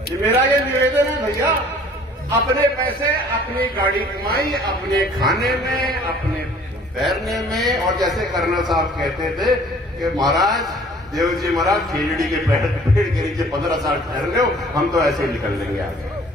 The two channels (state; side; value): normal; both; correlation 0.53